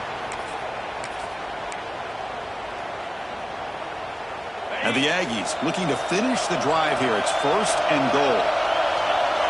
And the Aggies looking to finish the drive here. It's first and goal.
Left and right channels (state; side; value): identical; both; correlation 1.00